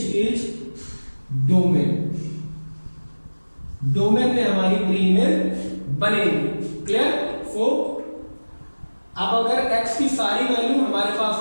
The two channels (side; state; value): both; inverted; correlation -1.00